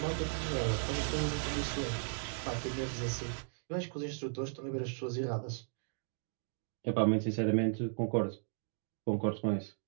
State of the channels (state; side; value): silent; left; digital silence